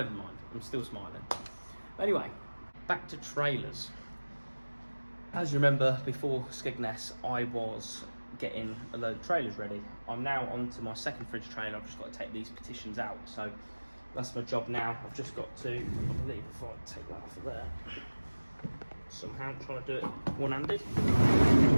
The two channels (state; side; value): inverted; both; correlation -1.00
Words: mind, I'm still smiling. Anyway, back to trailers. As you remember, before Skegness, I was getting a load of trailers ready. I'm now on to my second fridge trailer. I've just got to take these petitions out. So that's my job now. I've just got to, I believe, if I take that off of there, somehow trying to do it one-handed.